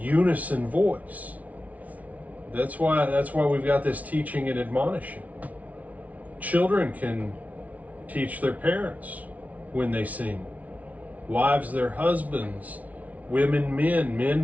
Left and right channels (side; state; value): left; late; 0.070 ms